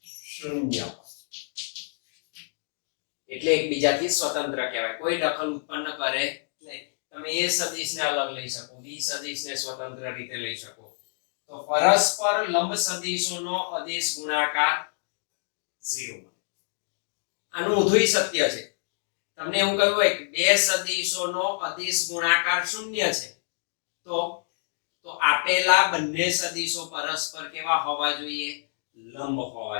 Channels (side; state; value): right; silent; digital silence